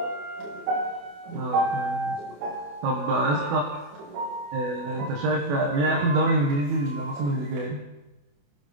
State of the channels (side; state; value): left; late; 28 ms